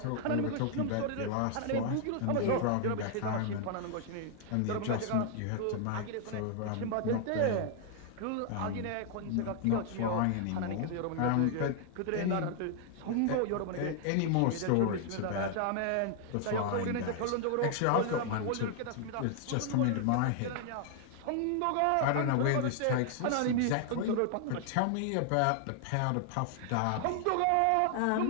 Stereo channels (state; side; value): different; both; correlation 0.00